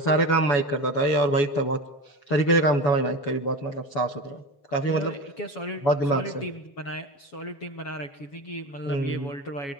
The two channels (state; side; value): late; right; 7.2 ms